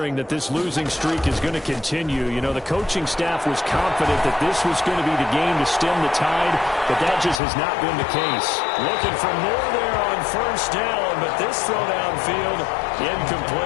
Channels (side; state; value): right; drops out; at 7.4 s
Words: that this losing streak is going to continue. The coaching staff was confident that this was going to be the game to stem the tide, but that just has not been the case. Looking for more there on first down, but this throw downfield,